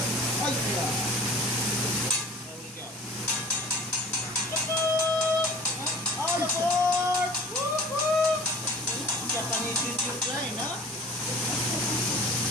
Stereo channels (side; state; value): both; normal; correlation 0.45